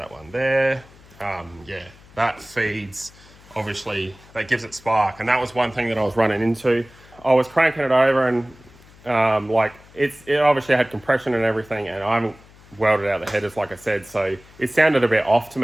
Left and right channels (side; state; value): left; noise; hum, 24 dB below the sound